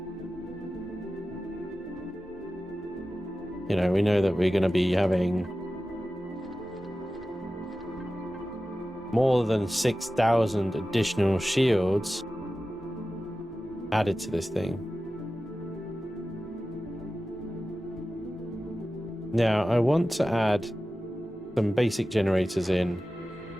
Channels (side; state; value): both; normal; correlation 0.94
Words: you know, we know that we're going to be having more than 6,000 additional shields added to this thing. Now, I want to add some basic generators in